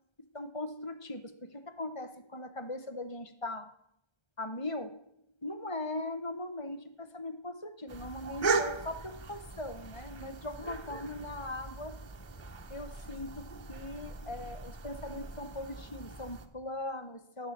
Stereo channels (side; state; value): right; late; 1.3 ms